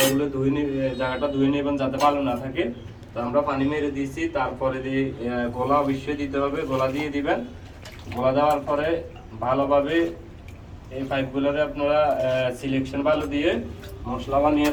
জায়গাটা ধুয়ে নেবেন যাতে ভালো না থাকে। তো আমরা পানি মেরে দিয়েছি, তারপরে দিয়ে গোলা অবশ্যই দিতে হবে, গোলা দিয়ে দিবেন। গোলা দেওয়ার পরে ভালোভাবে এই পাইপগুলোরে আপনারা সিলেকশন ভালো দিয়ে মশলা বানিয়ে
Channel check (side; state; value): both; identical; correlation 1.00